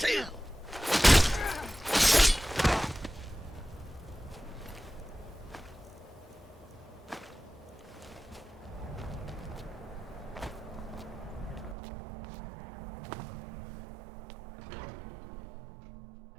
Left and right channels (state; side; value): drops out; left; at 11.8 s